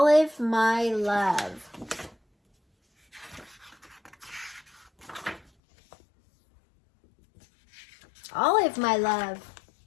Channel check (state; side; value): drops out; right; at 5.5 s